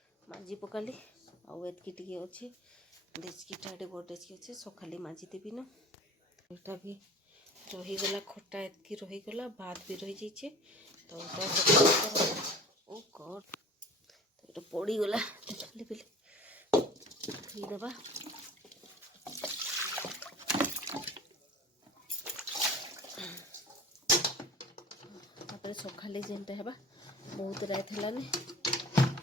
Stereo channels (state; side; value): normal; both; correlation 0.41